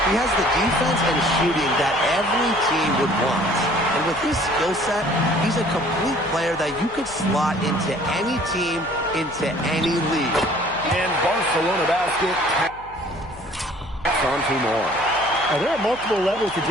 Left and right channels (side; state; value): left; noise; hum, 21 dB below the sound